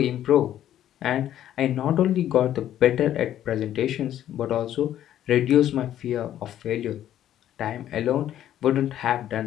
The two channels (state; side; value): quieter; right; 11.6 dB